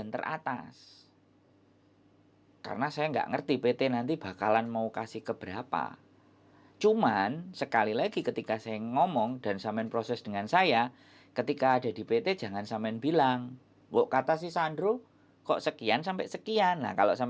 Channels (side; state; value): both; identical; correlation 1.00